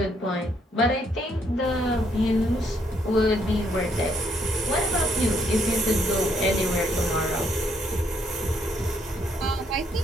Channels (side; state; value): both; normal; correlation 0.71